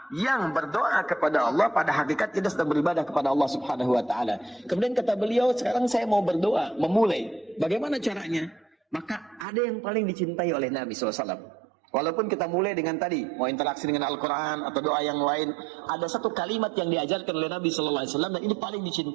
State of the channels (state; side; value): drops out; left; at 9.5 s